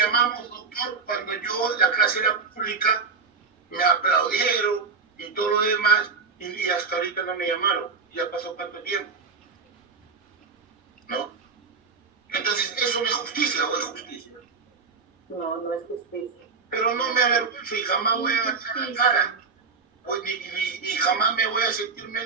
doctor, cuando la clase era pública, me aplaudieron y todo lo demás, y hasta ahorita no me llamaron. Ya pasó tanto tiempo, ¿no? Entonces, ¿eso no es justicia o es justicia? No, no es justicia. Pero no me avergüenzo y jamás voy a agachar la cara. Ni jamás me voy a sentir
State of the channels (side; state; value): left; quieter; 4.8 dB